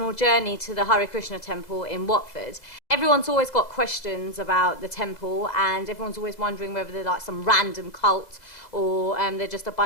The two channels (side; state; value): right; late; 2.0 ms